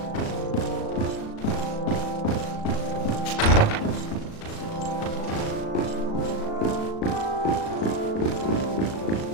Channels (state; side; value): late; right; 37 ms